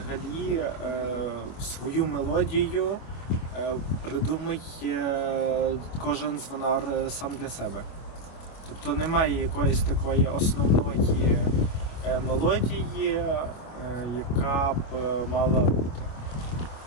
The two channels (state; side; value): late; right; 25 ms